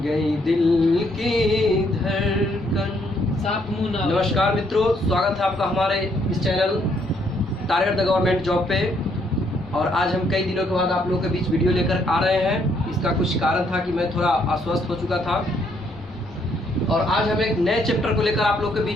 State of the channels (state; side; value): normal; both; correlation 0.70